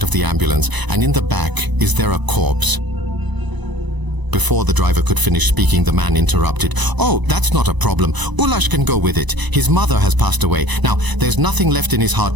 of the ambulance, and in the back, is there a corpse?" Before the driver could finish speaking, the man interrupted. "Oh, that's not a problem. Ulash can go with it. His mother has passed away. Now, there's nothing left in his heart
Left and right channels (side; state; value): left; late; 1.0 ms